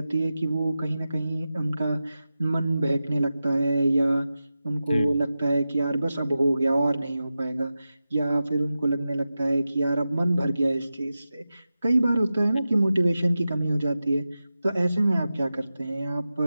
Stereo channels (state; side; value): inverted; both; correlation -0.93